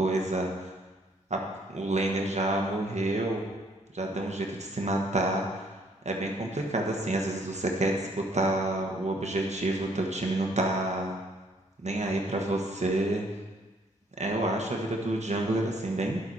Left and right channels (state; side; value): normal; both; correlation 0.65